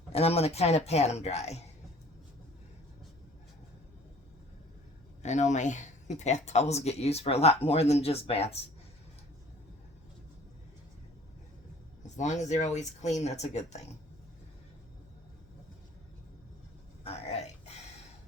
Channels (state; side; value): noise; left; hum, 27 dB below the sound